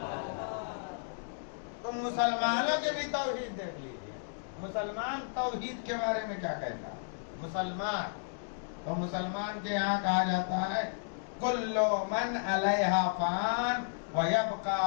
تو مسلمانوں کے بھی توحید دیکھ لیجیے. مسلمان توحید کے بارے میں کیا کہتا ہے؟ مسلمان تو مسلمان کے یہاں کہا جاتا ہے کل من علیہا فان وَيَبْقَى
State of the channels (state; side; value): silent; right; digital silence